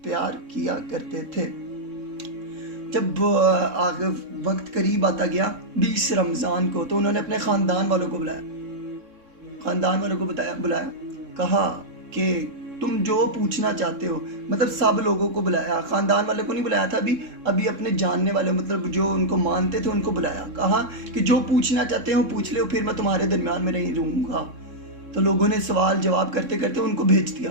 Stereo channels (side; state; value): left; late; 3.6 ms